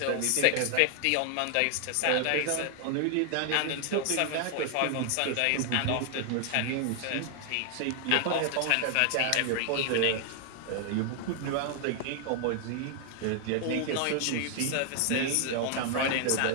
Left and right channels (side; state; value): both; different; correlation 0.00